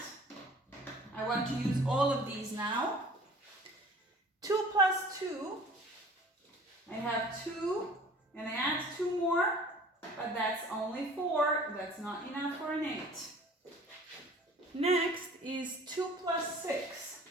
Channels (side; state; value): both; normal; correlation 0.48